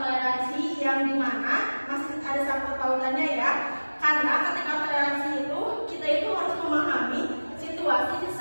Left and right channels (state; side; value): inverted; both; correlation -1.00